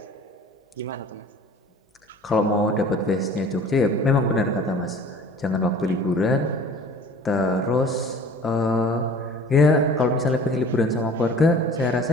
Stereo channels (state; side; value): normal; both; correlation 0.46